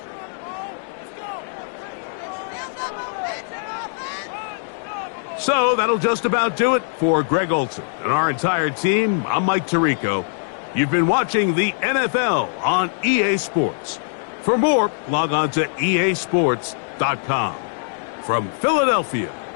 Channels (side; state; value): right; silent; digital silence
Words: So that'll just about do it for Greg Olsen and our entire team. I'm Mike Tirico. You've been watching the NFL on EA Sports. For more, log on to easports.com. From Philadelphia,